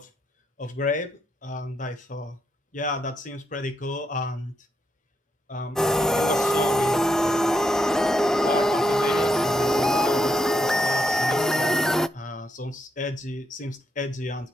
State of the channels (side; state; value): both; normal; correlation 0.79